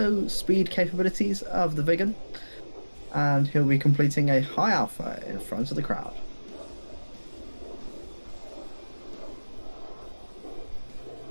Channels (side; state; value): both; inverted; correlation -1.00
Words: speed capabilities of the Vigan, and he'll be completing a high alpha in front of the crowd.